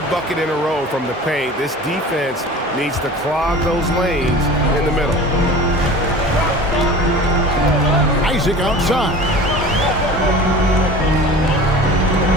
bucket in a row from the paint. This defense needs to clog those lanes in the middle. Isaac outside.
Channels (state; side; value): normal; both; correlation 0.38